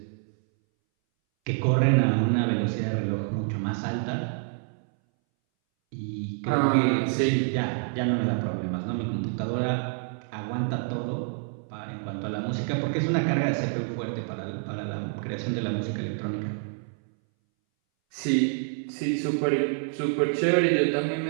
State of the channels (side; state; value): left; silent; 60 dB below the other